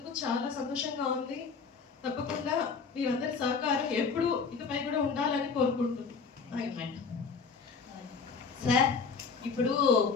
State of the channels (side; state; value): right; quieter; 5.2 dB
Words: చాలా సంతోషంగా ఉంది. తప్పకుండా మీరందరి సహకారం ఎప్పుడు ఇకపై కూడా ఉండాలని కోరుకుంటున్నాను. సార్, ఇప్పుడు